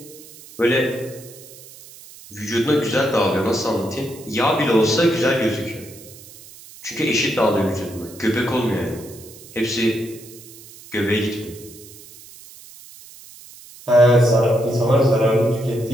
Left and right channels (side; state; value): right; noise; hiss, 19 dB below the sound